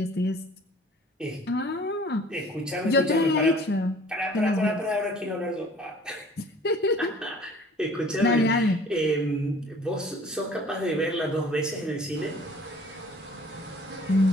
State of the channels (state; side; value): normal; both; correlation 0.51